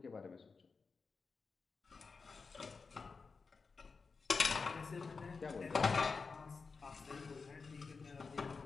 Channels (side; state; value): right; quieter; 4.7 dB